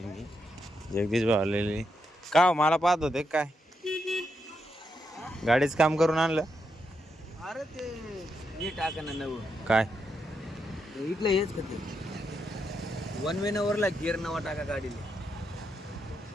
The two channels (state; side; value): normal; both; correlation 0.82